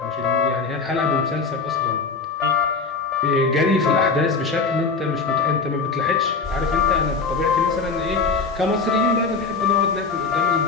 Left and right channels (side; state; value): right; quieter; 4.5 dB